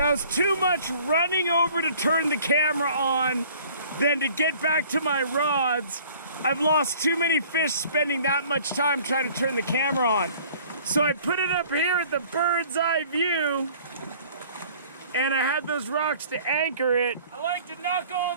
was too much running over to turn the camera on than to get back to my rods. I've lost too many fish spending that much time trying to turn the camera on. So I put it up here at the bird's eye view, and I had those rocks to anchor it. I like to knock all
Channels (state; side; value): inverted; both; correlation -0.52